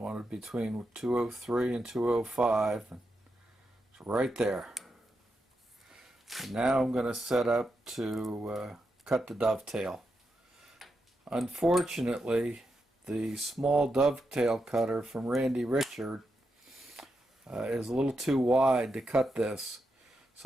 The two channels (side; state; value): both; normal; correlation 0.85